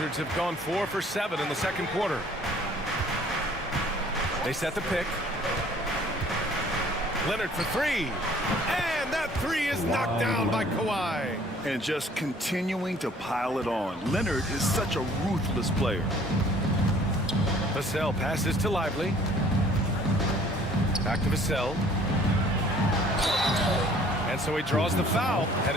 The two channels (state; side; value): normal; both; correlation 0.55